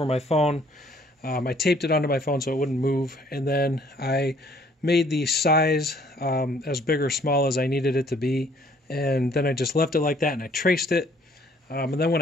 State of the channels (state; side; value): normal; both; correlation 0.61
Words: my phone. I taped it onto my phone so it wouldn't move, and then I made the size as big or small as I needed it to be, and then I just left it like that, and I traced it. And then when